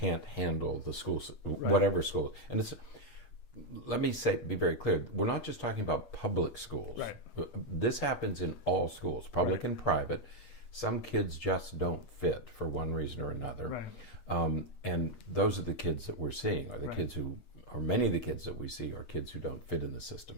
handle the schools, whatever school. And it's, let me be very clear, we're not just talking about public schools. This happens in all schools, public and private. Some kids just don't fit for one reason or another. And those are the kids that we're seeing, are the kids who, or many of the kids that we see are kids who don't fit in the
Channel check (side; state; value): right; late; 8.3 ms